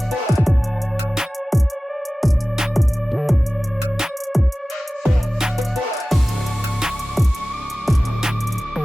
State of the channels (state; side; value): normal; both; correlation 0.97